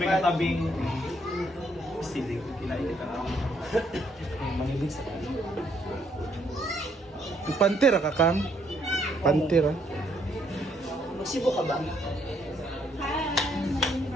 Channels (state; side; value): normal; both; correlation 0.70